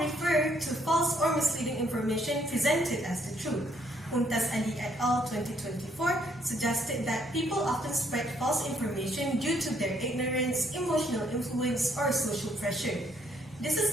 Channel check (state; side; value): normal; both; correlation 0.69